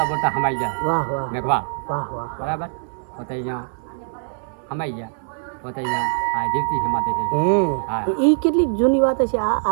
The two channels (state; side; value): silent; left; 64 dB below the other